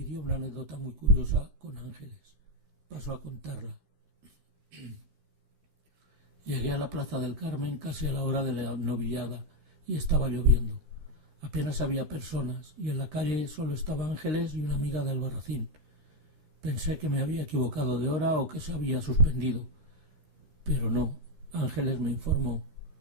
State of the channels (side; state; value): left; late; 13 ms